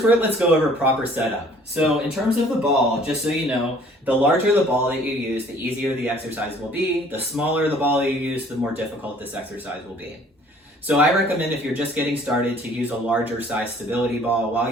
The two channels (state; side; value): normal; both; correlation 0.55